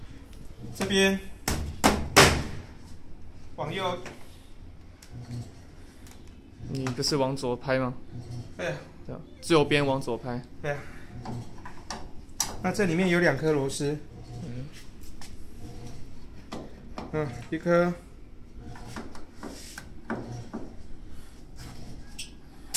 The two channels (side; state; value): both; identical; correlation 1.00